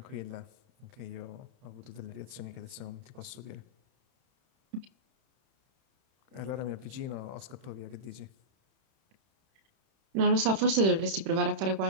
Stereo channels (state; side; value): late; left; 31 ms